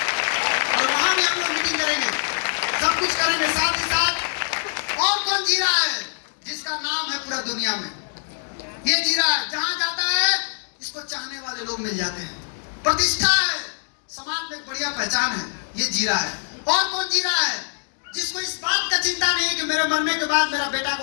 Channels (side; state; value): right; silent; digital silence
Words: और वहां भी हम लोग मीटिंग करेंगे, सब कुछ करेंगे। साथ ही साथ और कौन जी रहा है, जिसका नाम है पूरा दुनिया में, ये जी रहा है, जहां जाता है इसको चाहने वाले लोग मिल जाते हैं, प्रतिष्ठा है, समाज में एक बढ़िया पहचान है, ये जी रहा है। और कौन जी रहा है, जिसको इस बात का चिंता नहीं है कि मेरे मरने के बाद मेरा बेटा को